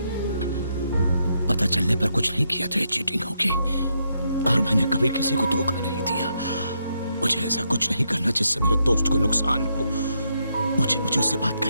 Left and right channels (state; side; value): inverted; both; correlation -0.79